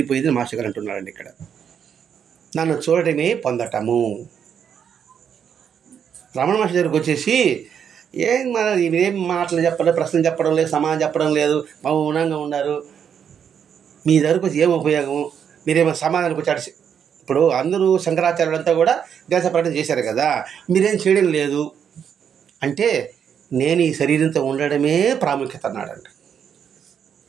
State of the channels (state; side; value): quieter; left; 7.9 dB